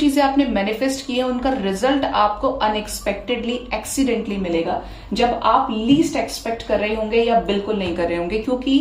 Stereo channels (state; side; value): identical; both; correlation 1.00